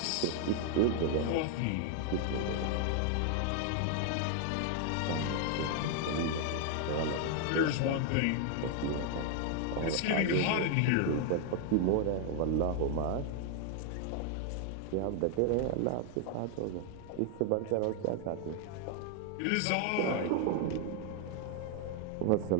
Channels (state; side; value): different; both; correlation 0.00